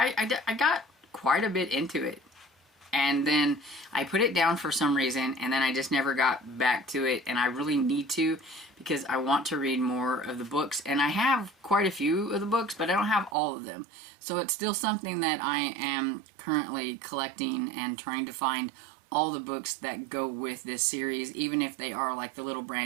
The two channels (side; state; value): left; drops out; at 13.4 s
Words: got quite a bit into it. And then I put it down for some reason, and then I just never got back to it. And I really need to, because I want to read more of the books. And I have quite a few of the books, but I don't have all of them. So it's still something that I am currently collecting and trying to find all the books that go with this series, even if they are the little